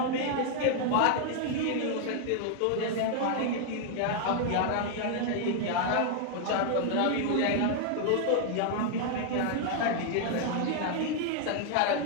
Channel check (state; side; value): different; both; correlation 0.00